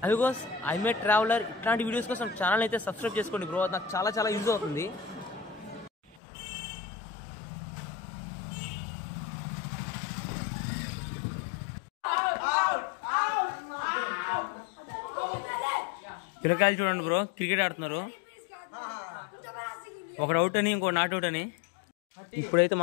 అమిగోస్. I'm a traveller. ఇట్లాంటి వీడియోస్ కోసం ఛానల్ అయితే సబ్స్క్రైబ్ చేసుకోండి బ్రో, నాకు చాలా చాలా యూజ్ అవుతుంది. పిల్లకాయలు చూడండి బ్రో, క్రికెట్ ఆడుతున్నారు. ఒకడు అవుట్ అని ఇంకో నాట్ అవుట్ అని. ఇప్పుడైతే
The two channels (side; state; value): right; drops out; at 6.2 s